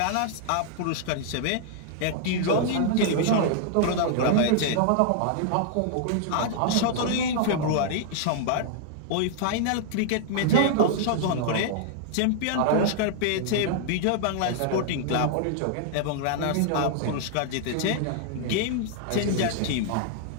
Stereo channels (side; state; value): both; different; correlation 0.00